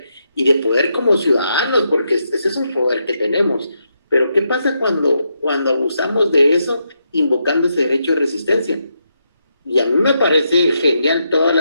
y de poder como ciudadanos, porque ese es un poder que tenemos. Pero ¿qué pasa cuando abusamos de eso, invocando ese derecho de resistencia? Y a mí me parece genial todas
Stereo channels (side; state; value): both; inverted; correlation -0.81